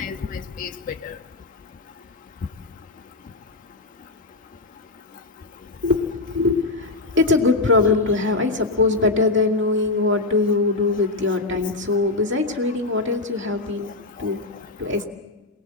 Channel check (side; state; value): right; quieter; 3.3 dB